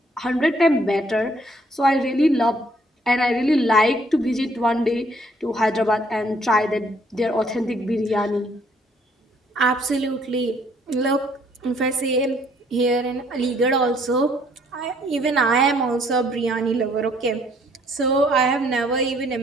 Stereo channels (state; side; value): normal; both; correlation 0.64